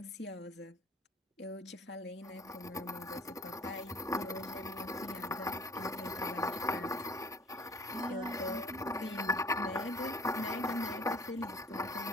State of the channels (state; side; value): normal; both; correlation 0.51